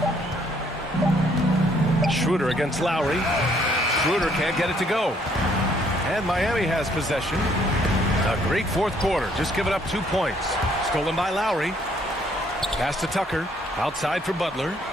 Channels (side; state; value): both; normal; correlation 0.66